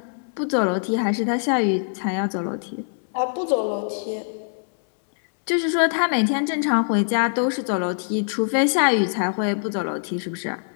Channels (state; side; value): silent; right; digital silence